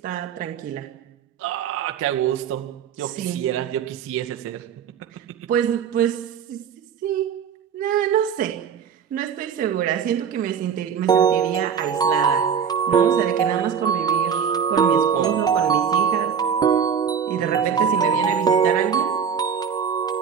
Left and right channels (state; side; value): quieter; left; 7.4 dB